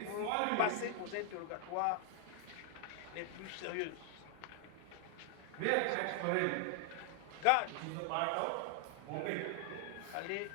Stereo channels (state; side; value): different; both; correlation 0.00